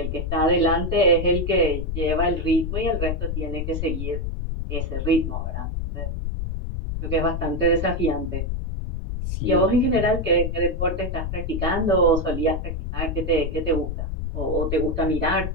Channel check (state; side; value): noise; left; rumble, 3 dB below the sound